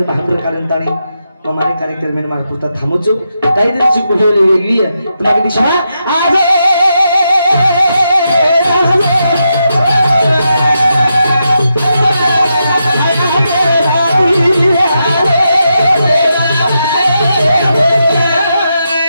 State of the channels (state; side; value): inverted; both; correlation -0.84